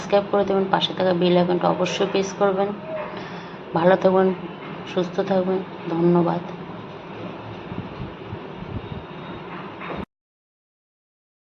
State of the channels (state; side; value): identical; both; correlation 1.00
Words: করে দেবেন, পাশে থাকা বেল আইকনটা অবশ্যই প্রেস করবেন। ভালো থাকবেন, সুস্থ থাকবেন, ধন্যবাদ।